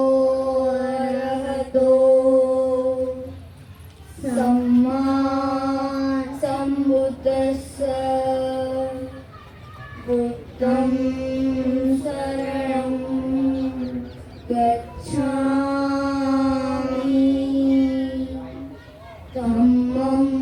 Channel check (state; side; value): identical; both; correlation 1.00